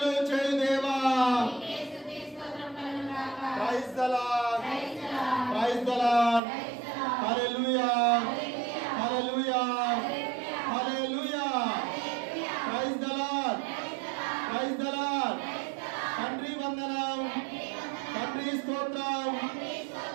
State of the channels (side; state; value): left; drops out; at 6.4 s